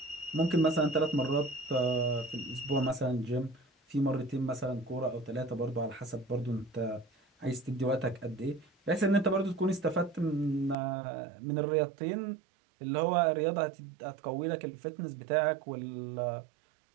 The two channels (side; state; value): left; drops out; at 10.8 s